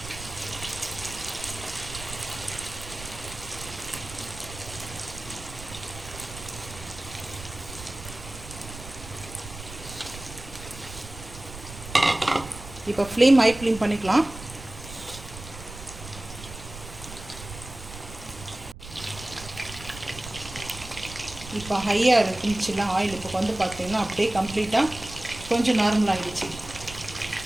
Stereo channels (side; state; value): right; noise; rumble, 13 dB below the sound